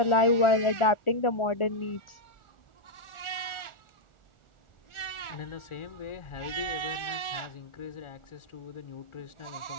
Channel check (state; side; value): late; right; 1.4 ms